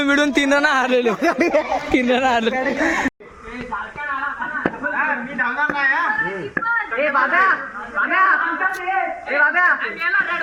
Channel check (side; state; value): both; identical; correlation 1.00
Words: मिडून 3 रन हारलेलो 3 रन हारलो मी धावणार